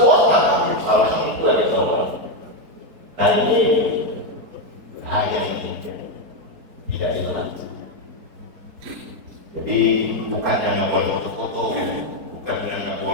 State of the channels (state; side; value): late; left; 4.3 ms